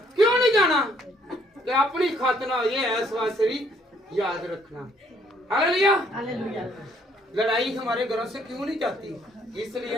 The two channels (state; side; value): normal; both; correlation 0.66